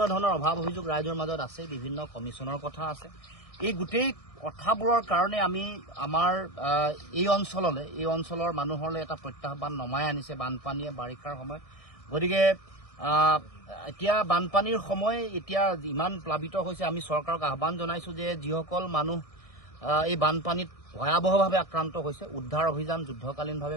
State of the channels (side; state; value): right; late; 1.6 ms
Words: ধৰণৰ অভাৱ অভিযোগ ৰাইজৰ মাজত আছে, বিভিন্ন কমিশ্যনৰ কথা আছে। এই গোটেই কথাবোৰৰ কাৰণে আমি আমাৰ এই অঞ্চলৰ মানুহলৈ এটা প্ৰত্যাহ্বান নমাই আনিছে বানপানীয়ে বাৰিষাৰ সময়ত। গতিকে এতিয়া বানপানীৰ সময় এতিয়া ইমান প্লাবিত হৈছে, আমি চৰকাৰক আহ্বান জনাইছোঁ যে যিসকল মানুহ এই বানপানীত ভয়াৱহভাৱে আক্ৰান্ত হৈছে, উদ্ধাৰ অভিযান